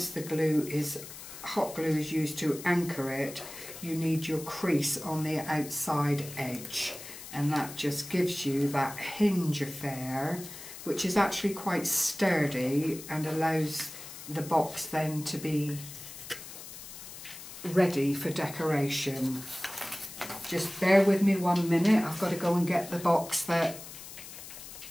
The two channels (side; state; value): left; noise; hiss, 13 dB below the sound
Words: the hot glue is used to anchor it, you need your crease on the outside edge, and that just gives you that hinge affair, which is actually quite sturdy and allows the box then to be ready for decoration. Just bear with me 1 minute, I've got to go and get the box that